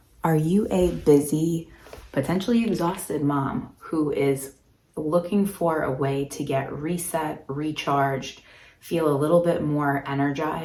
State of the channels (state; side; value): identical; both; correlation 1.00